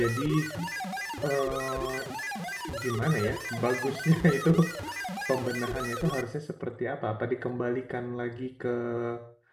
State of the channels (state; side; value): identical; both; correlation 1.00